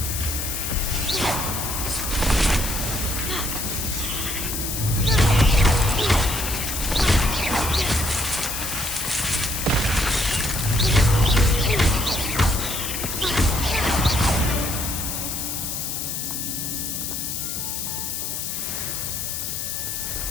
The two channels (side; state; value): left; noise; hiss, 3 dB below the sound